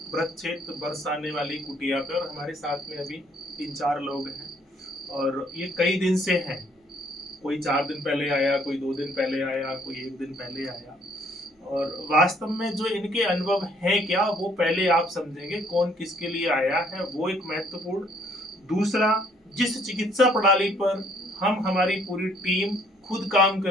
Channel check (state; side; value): normal; both; correlation 0.63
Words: ब्रह्मक्षेत्र बरसाने वाली कुटिया पे और हमारे साथ में अभी 3-4 लोग हैं और ये कई दिन से हैं। कोई 4 दिन पहले आया, कोई 2 दिन पहले आया, कोई 1 दिन पहले आया। और वास्तव में जो इनके अनुभव हैं क्या, वो पहले आप समझेंगे कौन किसके लिए आया है, वो एक महत्वपूर्ण। दूसरा, जिस चिकित्सा प्रणाली पर हम हमारी पूरी टीम खुद काम